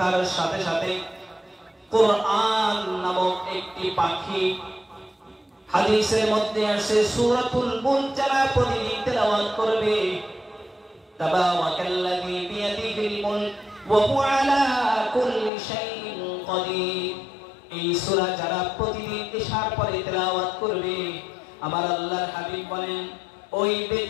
সাথে সাথে কোরআন নামক একটি পাখি, হাদিসের মধ্যে আসে সূরাতুল মুলক যারা প্রতিদিন তেলাওয়াত করবে, তাবারাকাল্লাযী বিয়াদিহিল মুলক ওয়া হুয়া আলা কুল্লি শাইইন কাদির। এই সূরা যারা প্রতিদিন ইশার পরে তেলাওয়াত করবে, আমার আল্লাহর হাবিব বলেন ওই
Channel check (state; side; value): drops out; right; at 15.5 s